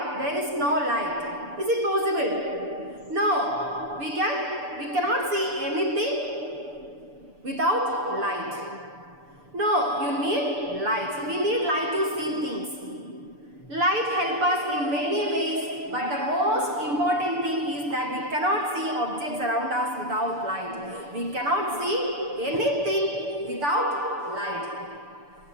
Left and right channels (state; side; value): late; left; 6.9 ms